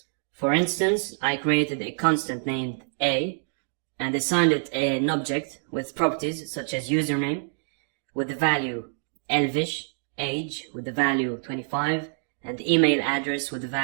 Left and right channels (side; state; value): left; silent; digital silence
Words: For instance, I created a constant named A and assigned it an object with properties such as username with the value Elvish, age with the value 25, and email address with the